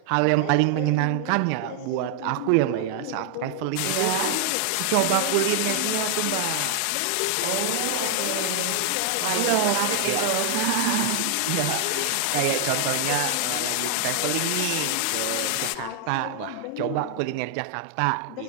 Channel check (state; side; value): different; both; correlation 0.00